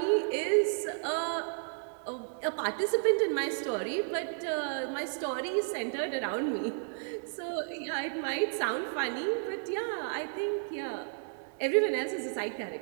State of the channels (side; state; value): left; silent; digital silence